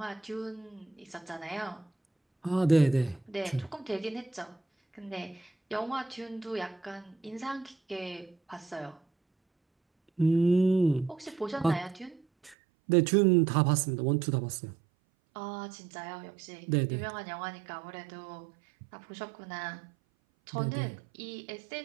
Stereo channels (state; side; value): drops out; left; at 12.6 s